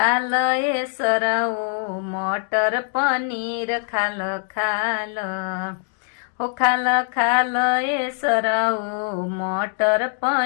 ए सरऊ मटर पनीर खाल खाल हो खाल खाल ए सरऊ मटर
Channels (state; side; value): silent; right; 56 dB below the other